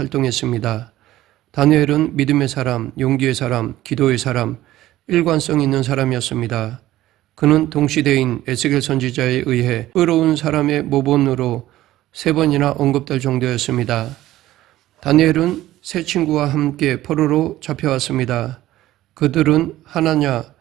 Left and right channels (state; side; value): quieter; left; 15.1 dB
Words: 다니엘은 믿음의 사람, 용기의 사람, 기도의 사람, 일관성 있는 사람이었습니다. 그는 동시대인 에스겔 선지자에 의해 의로운 사람의 모본으로 3번이나 언급될 정도였습니다. 다니엘은 세 친구와 함께 포로로 잡혀왔습니다. 그들은 하나냐,